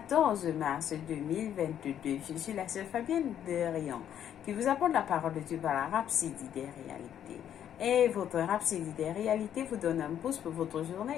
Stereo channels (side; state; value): right; quieter; 10.0 dB